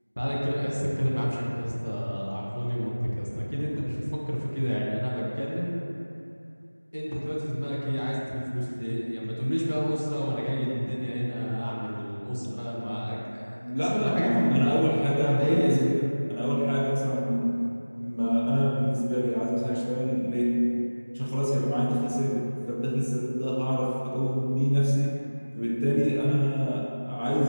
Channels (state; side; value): inverted; both; correlation -1.00